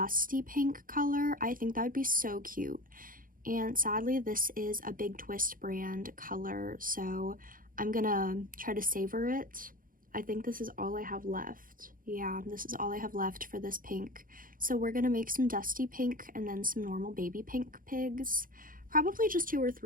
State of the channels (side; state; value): left; late; 0.40 ms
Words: pink color. I think that would be so cute. And sadly, this is a Big Twist brand color, so I'm gonna try to savor it. I think this is all I have left. Yeah, this is all I have left for this pink. So we're gonna make some dusty pink and then some normal baby pink pigs. Probably just 2 or